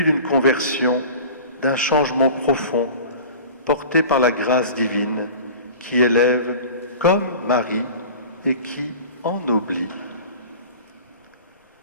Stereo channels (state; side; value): inverted; both; correlation -0.39